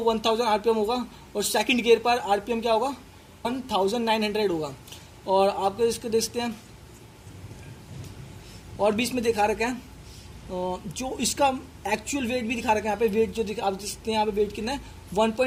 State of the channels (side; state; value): both; identical; correlation 1.00